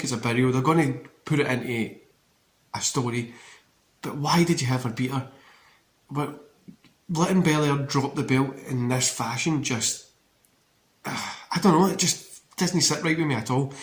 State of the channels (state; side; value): identical; both; correlation 1.00